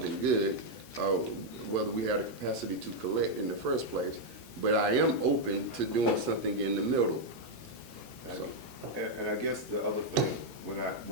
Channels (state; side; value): normal; both; correlation 0.00